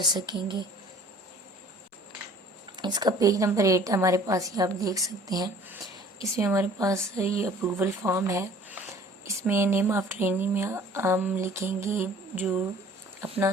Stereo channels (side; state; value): both; normal; correlation 0.51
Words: सकेंगे। इसका पेज नंबर 8 है हमारे पास, ये आप देख सकते हैं। इसमें हमारे पास ये अप्रूवल फॉर्म है। इसमें नेम ऑफ ट्रेनिंग में हम लिखेंगे, जो अपना